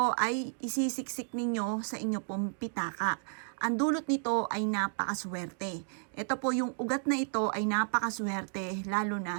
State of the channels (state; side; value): silent; left; 56 dB below the other